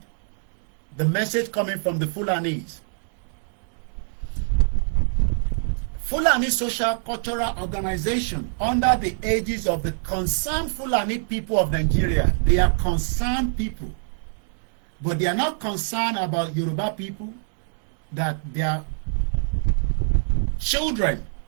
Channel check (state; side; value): silent; left; 62 dB below the other